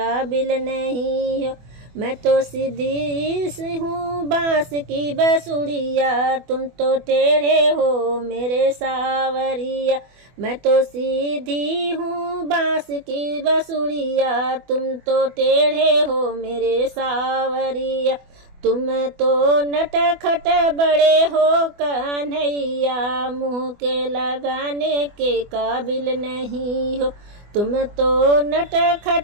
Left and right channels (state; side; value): late; left; 24 ms